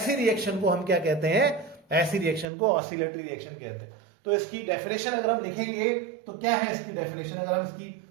रिएक्शन को हम क्या कहते हैं, ऐसी रिएक्शन को ऑसिलेटरी रिएक्शन कहते हैं। तो इसकी डेफिनेशन अगर हम लिखेंगे तो क्या है इसकी डेफिनेशन, अगर हम इसकी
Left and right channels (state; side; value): drops out; left; at 2.5 s